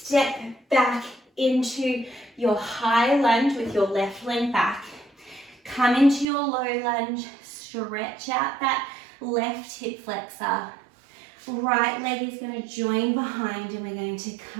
back into your high lunge with your left leg back. Come into your low lunge, stretch out that left hip flexor. Right leg is going to join behind and we're going to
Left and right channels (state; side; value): drops out; left; at 6.2 s